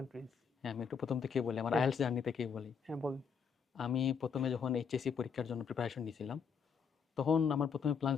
হ্যাঁ, আমি একটু প্রথম থেকেই বলি, আমার আইএলটিএস জার্নি থেকেই বলি। হ্যাঁ, বলুন। আমি প্রথমে যখন এইচএসসি পরীক্ষার জন্য প্রিপারেশন নিয়েছিলাম, তখন আমার প্রথমে প্ল্যান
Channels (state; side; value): quieter; right; 6.4 dB